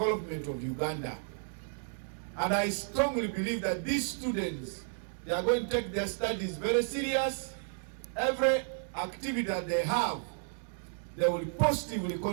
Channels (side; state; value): left; silent; digital silence